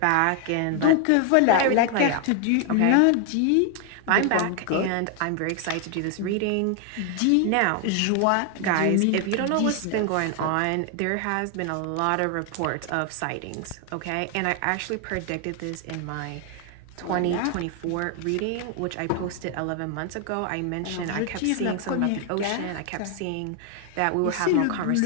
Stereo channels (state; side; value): different; both; correlation 0.00